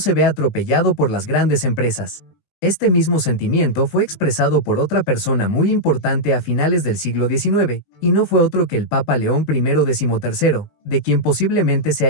vea atropellado por las grandes empresas. Este mismo sentimiento fue expresado por otra persona muy importante a finales del siglo XIX, y no fue otro que el Papa León I XIII, de quien posiblemente se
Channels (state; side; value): late; right; 19 ms